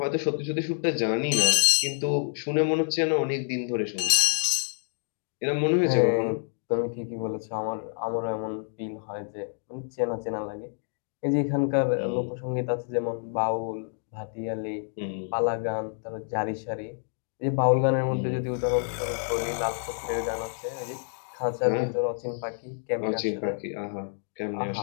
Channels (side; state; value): right; silent; digital silence